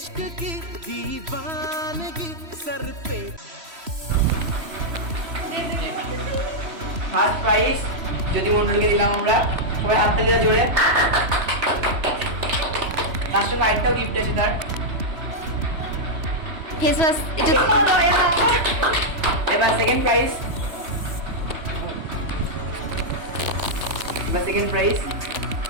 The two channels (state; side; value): late; left; 3.1 ms